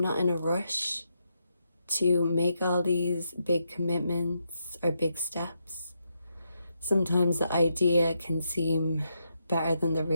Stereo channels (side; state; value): both; inverted; correlation -0.82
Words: in a rush to make all these big commitments or big steps. Sometimes the idea can seem better than the